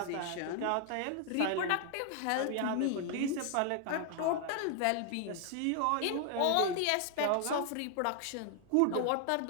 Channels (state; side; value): different; both; correlation 0.00